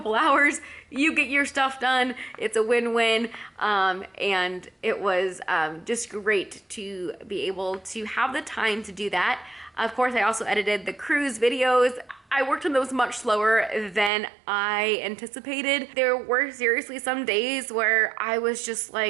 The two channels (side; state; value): left; drops out; at 14.1 s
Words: hours. You get your stuff done. It's a win-win. And it was just great to be able to have the time to do that. Of course, I also edited the cruise videos. I worked on those much slower than I anticipated. There were seriously some days where I was just